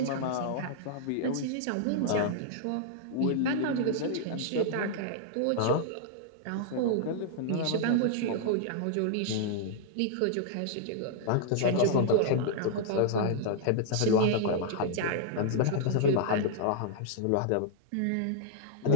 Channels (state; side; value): different; both; correlation -0.01